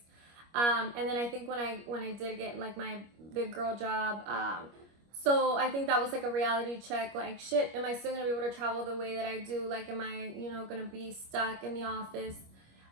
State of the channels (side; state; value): left; late; 25 ms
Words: And then I think when I did get like my big girl job, so I think that was like a reality check, like, shit, am I still gonna be able to travel the way that I do? Like, am I, gonna be stuck in the office?